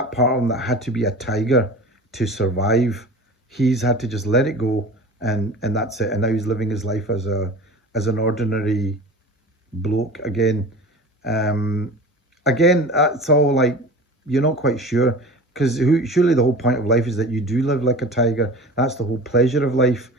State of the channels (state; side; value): normal; both; correlation 0.37